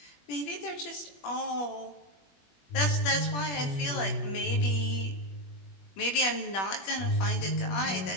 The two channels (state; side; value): late; right; 21 ms